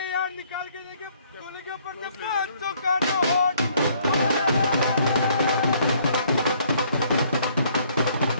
यार निकाल के लेके गोली के ऊपर से 500 का नोट।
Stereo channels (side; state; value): both; inverted; correlation -0.64